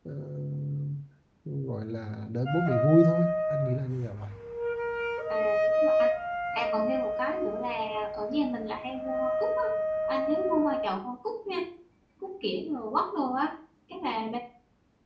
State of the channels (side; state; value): both; identical; correlation 1.00